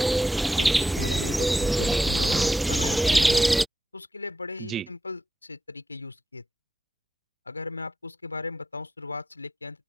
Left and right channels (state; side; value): normal; both; correlation 0.86